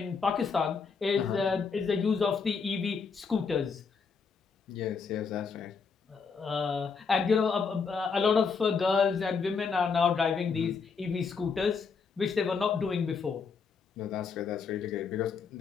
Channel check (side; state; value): right; quieter; 5.4 dB